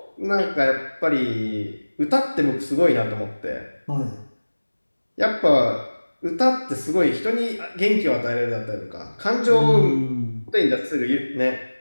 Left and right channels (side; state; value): both; inverted; correlation -1.00